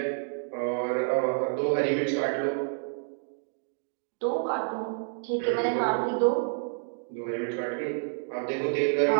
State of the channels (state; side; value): silent; left; digital silence